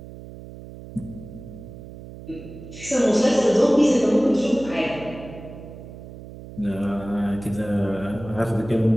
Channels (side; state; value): right; noise; hum, 15 dB below the sound